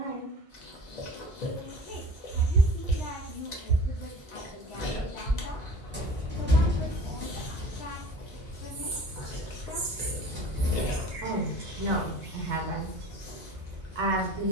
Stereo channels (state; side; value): normal; both; correlation 0.42